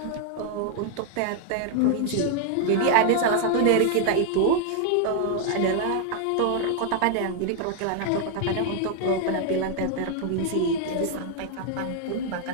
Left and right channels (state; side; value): different; both; correlation 0.00